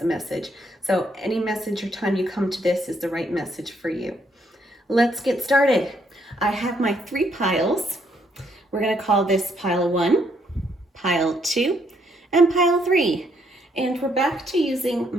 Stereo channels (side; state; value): both; normal; correlation 0.72